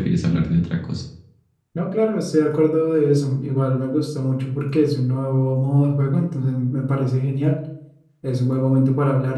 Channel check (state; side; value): identical; both; correlation 1.00